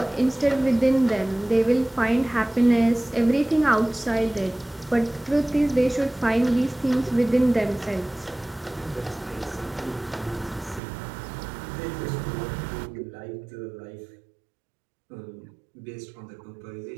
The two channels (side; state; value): left; drops out; at 10.8 s